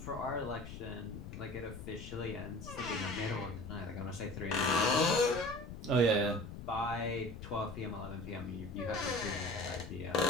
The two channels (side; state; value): left; noise; rumble, 11 dB below the sound